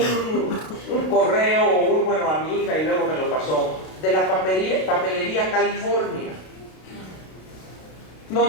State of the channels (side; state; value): right; late; 32 ms